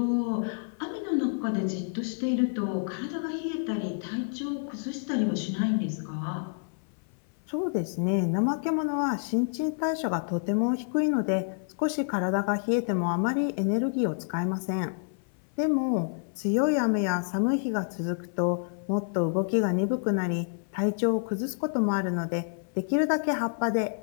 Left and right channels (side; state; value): right; silent; 59 dB below the other